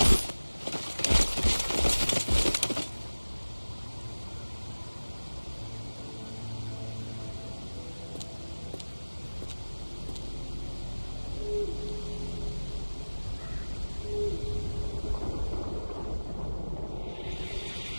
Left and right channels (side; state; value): both; inverted; correlation -1.00